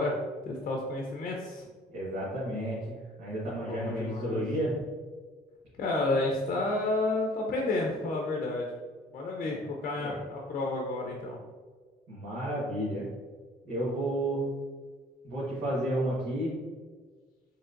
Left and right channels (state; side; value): normal; both; correlation 0.53